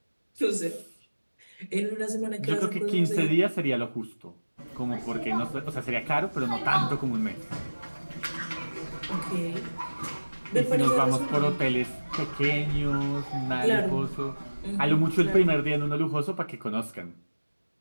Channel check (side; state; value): both; inverted; correlation -1.00